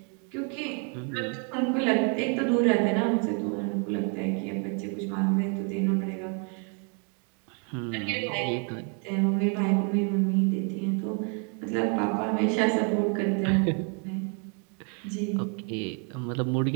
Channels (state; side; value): quieter; left; 39.1 dB